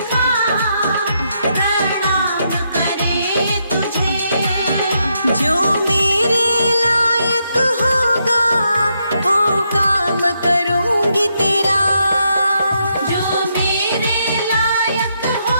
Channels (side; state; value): both; inverted; correlation -0.79